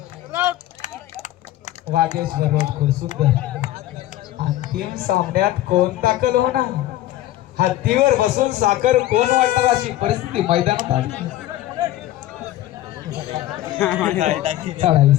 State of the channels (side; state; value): right; quieter; 14.5 dB